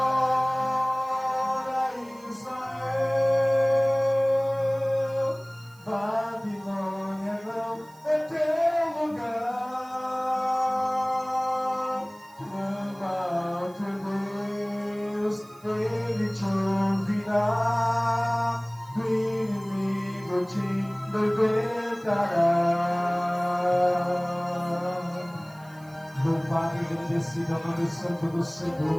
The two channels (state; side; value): noise; right; hiss, 27 dB below the sound